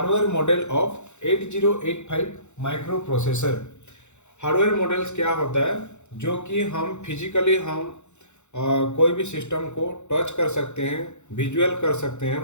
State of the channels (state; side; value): late; right; 0.83 ms